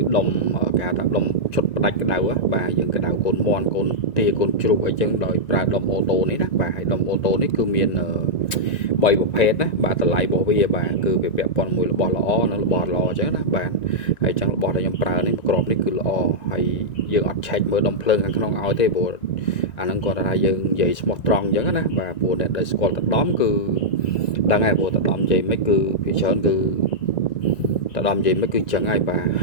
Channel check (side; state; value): right; late; 1.9 ms